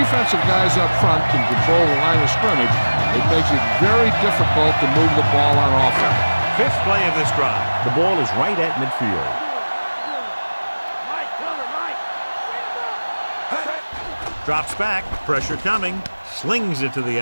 guys up front can control the line of scrimmage, it makes it very difficult to move the ball on offense. 5th play of this drive. The ball is right at midfield. Drops back, pressure coming, slings it to the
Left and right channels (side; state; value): both; inverted; correlation -1.00